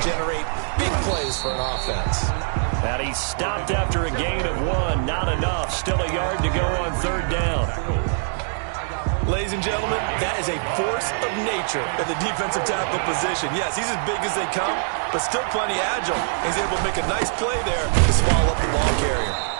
generate big plays for an offense. And he stopped after a gain of 1. Not enough. Still a yard to go on third down. Ladies and gentlemen, that is a force of nature at the defensive tackle position. Yes, he's as big as they come, but still plenty agile. He's able to make a nice play there to swallow up the ball carrier.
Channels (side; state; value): left; silent; digital silence